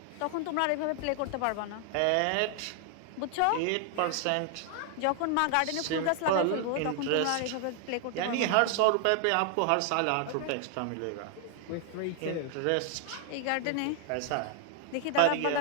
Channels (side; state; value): both; different; correlation 0.00